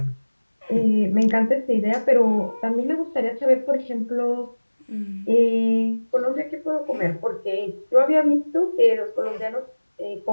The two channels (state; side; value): inverted; both; correlation -1.00